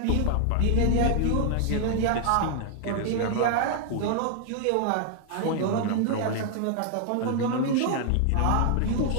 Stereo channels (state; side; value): different; both; correlation 0.00